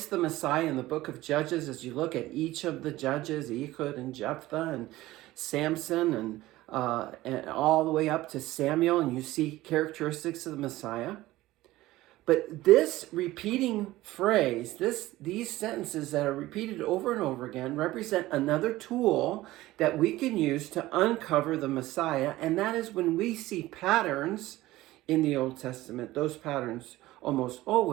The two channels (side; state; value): left; quieter; 17.2 dB